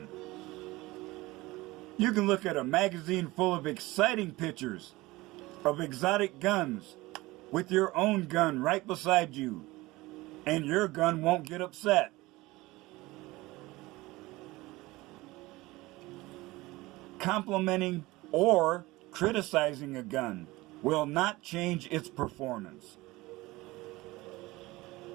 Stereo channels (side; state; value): left; quieter; 20.3 dB